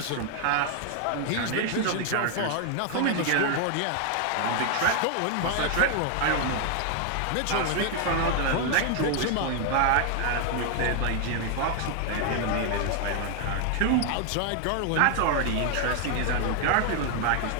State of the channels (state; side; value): different; both; correlation 0.00